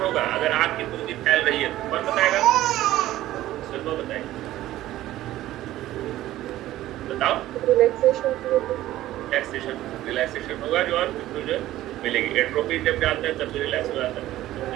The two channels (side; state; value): left; quieter; 14.8 dB